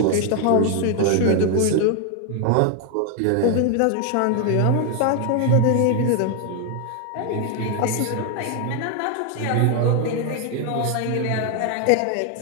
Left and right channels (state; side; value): different; both; correlation 0.00